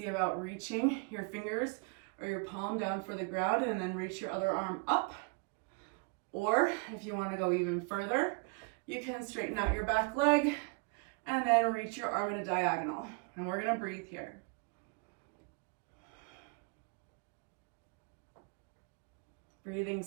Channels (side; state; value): left; quieter; 32.4 dB